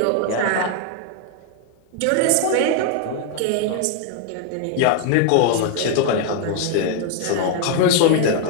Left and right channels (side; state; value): both; different; correlation 0.00